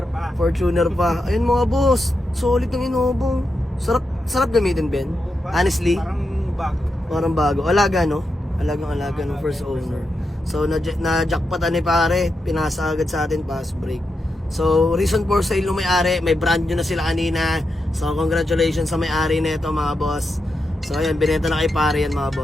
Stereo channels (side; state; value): both; normal; correlation 0.86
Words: pa. Fortuner pa. Ayun, mga boss. Solid ng Innova. Sarap gamitin, Ben. Honestly, Parang bago. parang bago. Alaga, no? Alagang-alaga ng first owner. So, na-jackpotan ni pare. Pinasa agad sa atin, pass break. So, reason for sale ng may-ari, may brand new na sila kanina. So, congratulations sa may-ari nito, mga boss. So, ayan, binenta na kay pare yan, mga